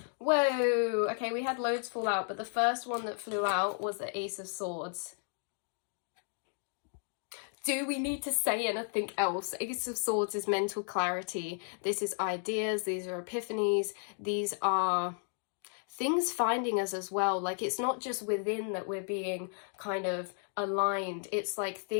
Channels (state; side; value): silent; right; 55 dB below the other